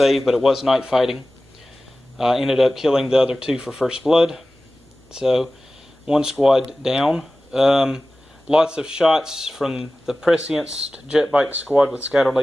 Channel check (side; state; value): both; normal; correlation 0.96